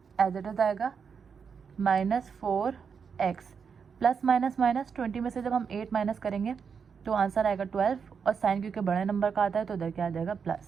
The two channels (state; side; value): quieter; left; 6.3 dB